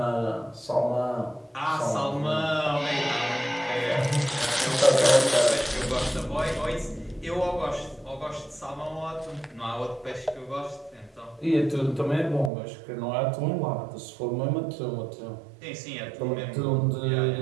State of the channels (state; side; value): drops out; left; at 12.5 s